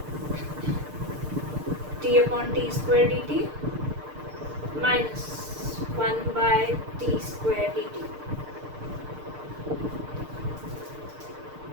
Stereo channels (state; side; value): late; left; 6.6 ms